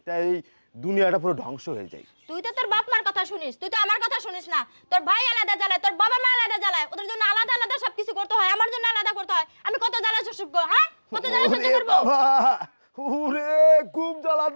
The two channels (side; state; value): both; inverted; correlation -1.00